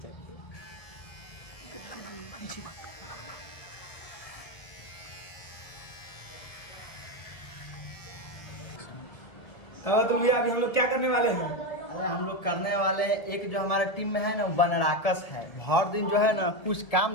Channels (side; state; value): right; late; 1.7 ms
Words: तो भैया अभी हम लोग क्या करने वाले हैं? अरे हम लोग करने वाले हैं, एक जो हमारा टीम में है ना बनराकस है, भर दिन जो है ना कुछ